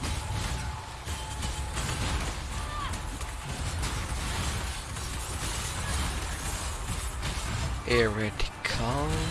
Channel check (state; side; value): identical; both; correlation 1.00